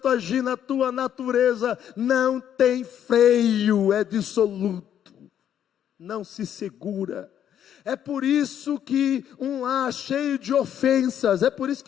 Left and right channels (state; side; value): quieter; right; 9.8 dB